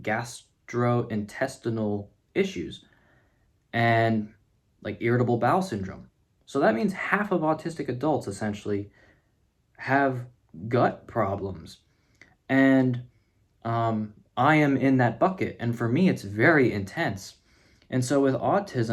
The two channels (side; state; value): both; identical; correlation 1.00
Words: gastrointestinal issues and like irritable bowel syndrome. So that means half of autistic adults essentially have gut problems. And I am in that bucket. And for me, it's very intense. And so with